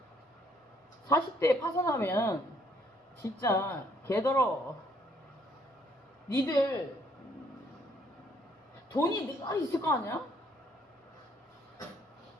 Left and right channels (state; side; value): normal; both; correlation 0.66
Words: 40대에 파산하면 진짜 개더러. 니들 돈이 늘 있을 거 아니야?